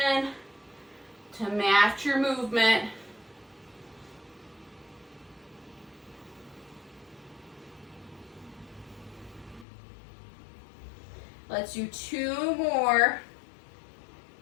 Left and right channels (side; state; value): right; drops out; at 9.7 s